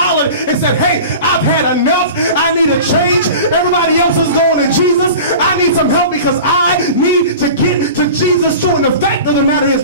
and said, hey, I've had enough. I need a change. Everybody else is going to Jesus. I need some help because I need to get to Jesus too. And the fact of the matter is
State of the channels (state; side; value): inverted; both; correlation -0.36